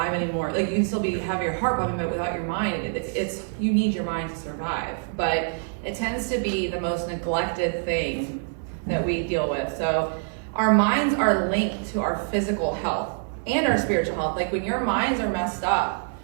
anymore. Like, you can still have your heart pumping, but without your mind, you need your mind to survive. But it tends to be the most neglected thing that we deal with. So our minds are linked to our physical health and our spiritual health. Like, when your minds are messed up,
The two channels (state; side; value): silent; left; 61 dB below the other